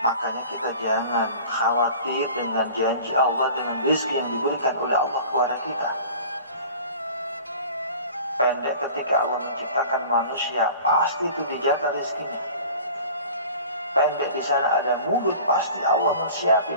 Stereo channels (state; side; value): inverted; both; correlation -0.42